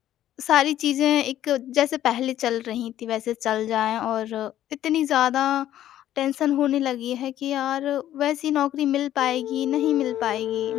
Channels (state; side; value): quieter; right; 12.3 dB